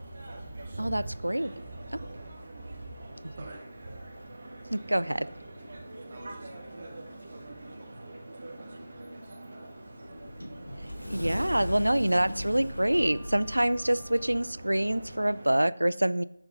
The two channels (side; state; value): both; inverted; correlation -0.99